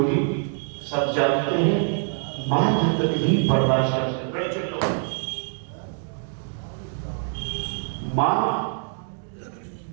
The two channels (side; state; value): left; silent; 62 dB below the other